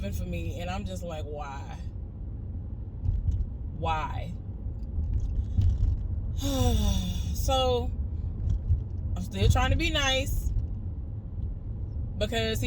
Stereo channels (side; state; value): both; identical; correlation 1.00